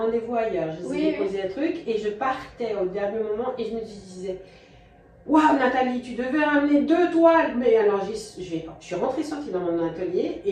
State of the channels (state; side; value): identical; both; correlation 1.00